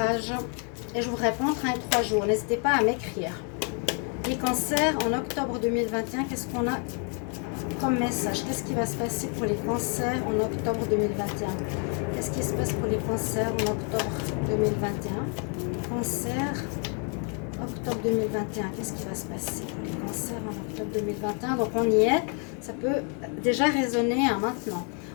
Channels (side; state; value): right; quieter; 39.7 dB